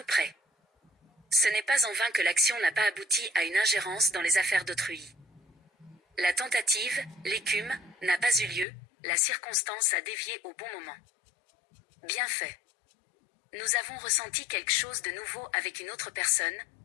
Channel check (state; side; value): drops out; right; at 8.7 s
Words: près. Ce n'est pas en vain que l'action n'a pas abouti à une ingérence dans les affaires d'autrui. La tentative, l'écume, n'a pas eu lieu, la circonstance a dévié au bon moment. Bien fait. Nous avons ressenti quelque chose de nouveau avec une autre personne,